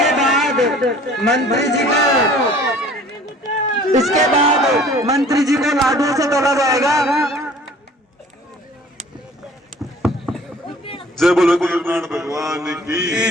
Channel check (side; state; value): both; normal; correlation 0.50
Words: इसके बाद मंत्री जी को लाडू से तोला जाएगा। जय बोलो गुरुनान भगवान की जय,